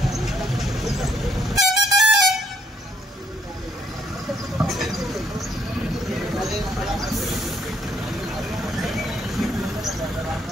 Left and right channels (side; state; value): both; normal; correlation 0.69